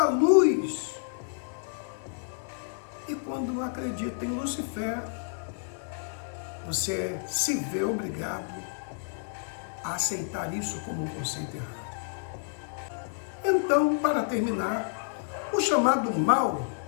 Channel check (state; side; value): silent; right; 58 dB below the other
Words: luz. E quando acredita em Lúcifer, você se vê obrigado a aceitar isso como um conceito errado. Então, para terminar, o chamado mal